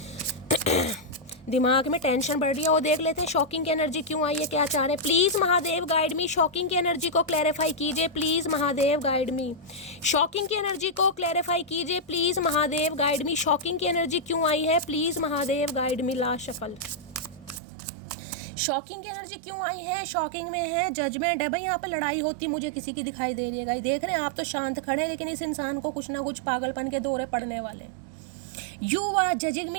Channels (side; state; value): left; drops out; at 17.6 s